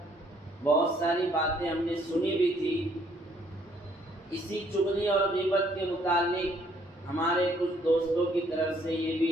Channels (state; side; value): normal; both; correlation 0.65